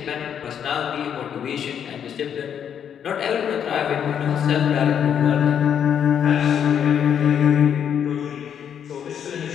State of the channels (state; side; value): quieter; right; 8.5 dB